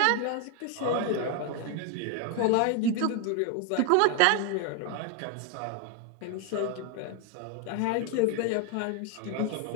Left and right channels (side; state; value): both; different; correlation 0.01